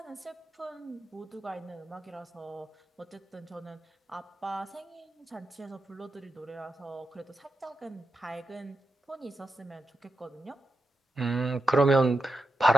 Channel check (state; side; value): normal; both; correlation 0.89